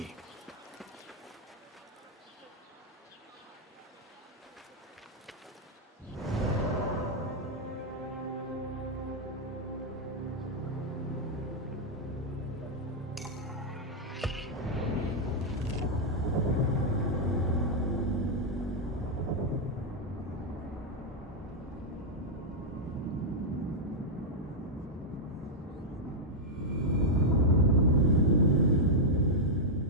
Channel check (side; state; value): both; normal; correlation -0.04